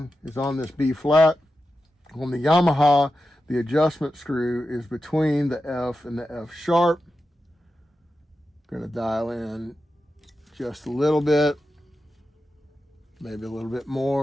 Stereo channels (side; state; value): both; normal; correlation 0.91